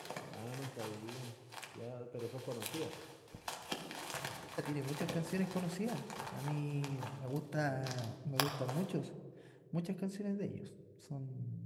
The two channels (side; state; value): both; identical; correlation 1.00